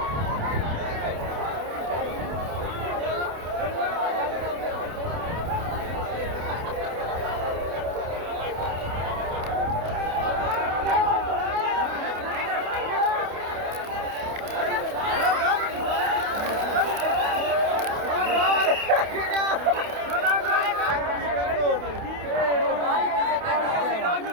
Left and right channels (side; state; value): left; late; 28 ms